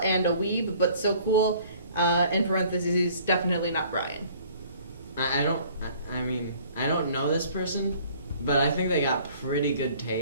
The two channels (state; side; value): inverted; both; correlation -0.55